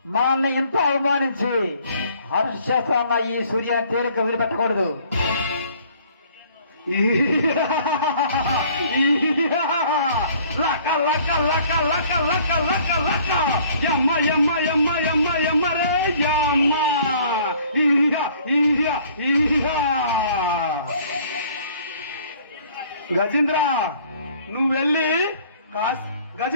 మనల్ని ఎంతో అవమానించి హర్షేస్తున్న ఈ సూర్యాన్ని తేలిక వదిలిపెట్టకూడదు. లక లక లక లక లక లక లక యమ్మ యమ్మ యమ్మ యమ్మ యమ్మ రే యమ్మ. గజేంద్ర నువ్వు వెళ్ళి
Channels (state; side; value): inverted; both; correlation -0.56